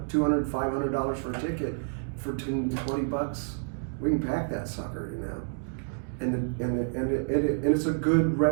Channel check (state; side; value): silent; left; digital silence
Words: $200, $500 for a ticket for $20, we can pack that sucker, you know. And it's a good